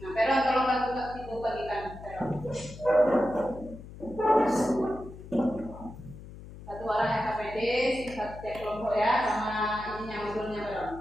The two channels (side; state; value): left; noise; hum, 15 dB below the sound